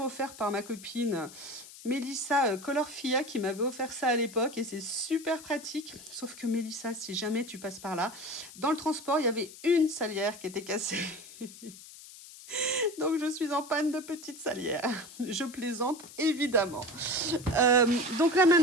offerte par ma copine Mélissa Colorfia qui m'avait offert ça à l'époque et c'est super pratique. Sauf que Mélissa, si jamais tu passes par là, dans le transport, il y avait une salière qui était cassée. Donc, je suis en panne de petite salière. Je plaisante, évidemment. Donc là,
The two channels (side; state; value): left; noise; hiss, 17 dB below the sound